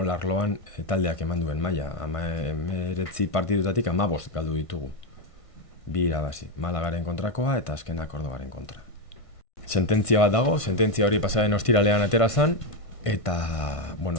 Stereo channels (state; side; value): late; right; 1.5 ms